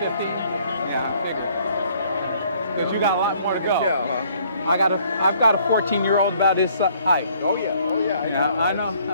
Because you got a lot more to go. Yeah, huh? I've got a 14-year-old about his height. Oh yeah. I know.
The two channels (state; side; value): inverted; both; correlation -0.62